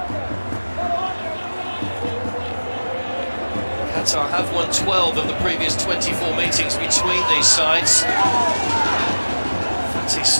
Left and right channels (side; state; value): both; inverted; correlation -1.00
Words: Qatar have won 12 of the previous 24 meetings between these sides. Fatty